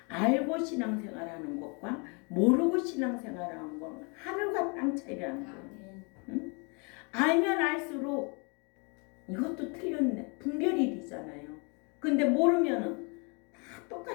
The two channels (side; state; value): right; quieter; 33.9 dB